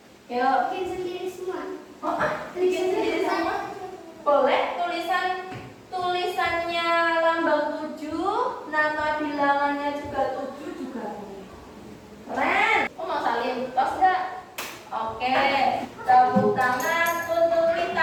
Yuk. Bikin sendiri semua. Oh, bikin sendiri semua. Boleh tulisannya lambang 7, nama bilangannya juga 7 juga boleh. Keren. Oh, mau salin tos enggak? Oke. Tepuk tangan untuk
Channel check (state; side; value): identical; both; correlation 1.00